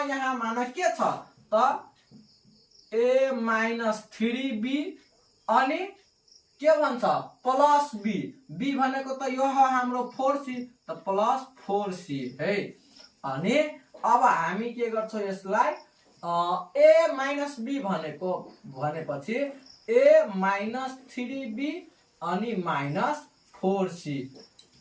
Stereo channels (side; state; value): both; identical; correlation 1.00